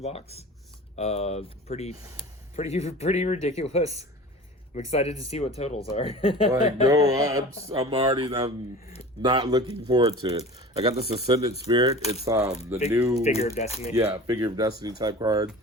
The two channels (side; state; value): both; normal; correlation 0.38